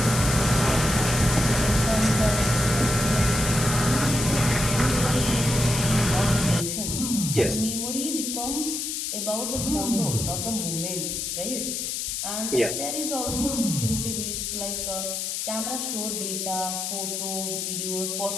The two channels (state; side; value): noise; left; hiss, 3 dB below the sound